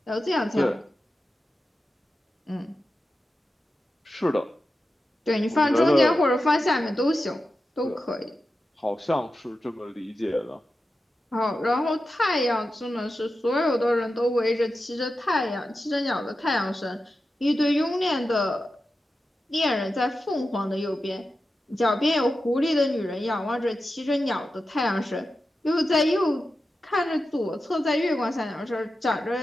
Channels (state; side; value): normal; both; correlation 0.91